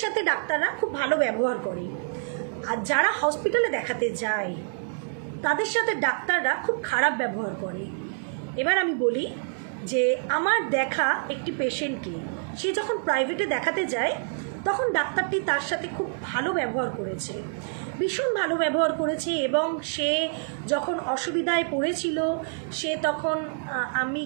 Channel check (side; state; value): left; silent; 60 dB below the other